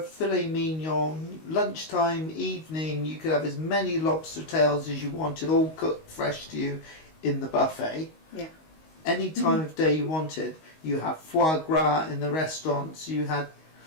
filet mignon, lunchtime, evening. You could have as many lobster tails as you wanted, all cooked fresh to you in the buffet. Yeah. Any time of day you wanted. You have foie gras in the restaurants. You had.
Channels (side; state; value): right; late; 19 ms